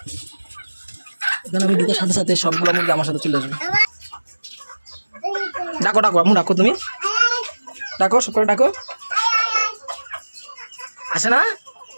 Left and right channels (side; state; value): both; inverted; correlation -1.00